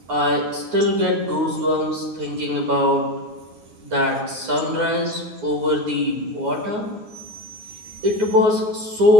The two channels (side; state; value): left; late; 9.5 ms